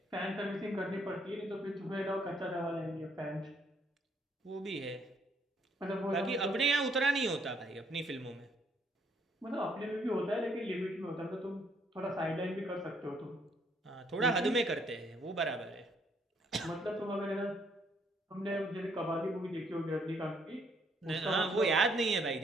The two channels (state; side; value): normal; both; correlation 0.68